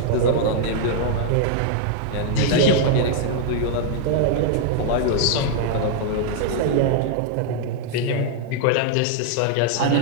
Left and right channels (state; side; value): different; both; correlation 0.00